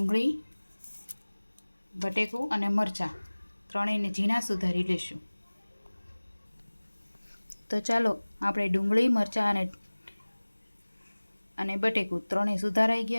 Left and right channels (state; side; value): inverted; both; correlation -1.00